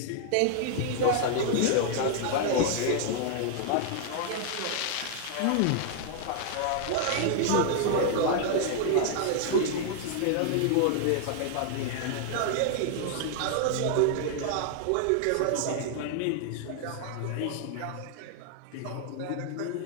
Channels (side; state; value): both; different; correlation 0.00